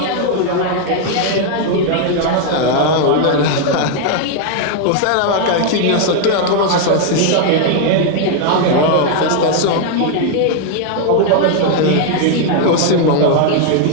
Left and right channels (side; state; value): both; different; correlation 0.00